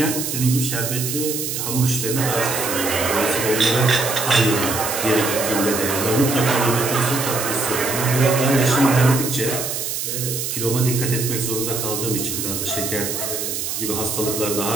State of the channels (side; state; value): right; noise; hiss, 3 dB below the sound